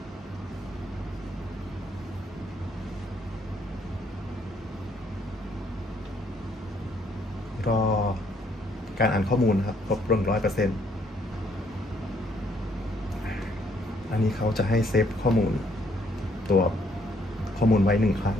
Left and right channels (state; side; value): normal; both; correlation 0.68